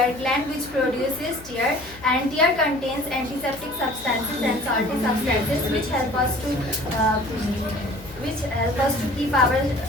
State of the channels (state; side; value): noise; left; hum, 20 dB below the sound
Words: gland which produces tear, and tear contains antiseptic substances and salty substances which help us to keep our